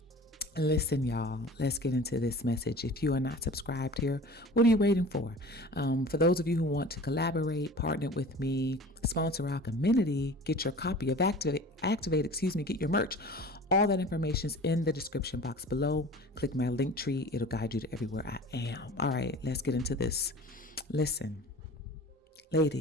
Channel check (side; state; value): both; normal; correlation 0.41